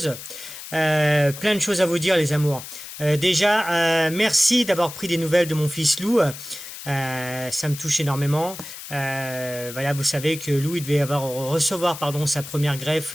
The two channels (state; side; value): noise; left; hiss, 12 dB below the sound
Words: Plein de choses à vous dire, les amours. Déjà, merci d'avoir pris des nouvelles de mon fils Lou. Ça me touche énormément. Voilà, vous savez que Lou, il devait recevoir pardon, sa première greffe